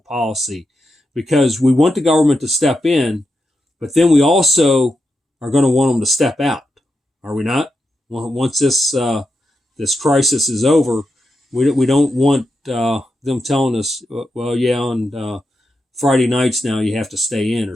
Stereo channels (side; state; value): both; normal; correlation 0.86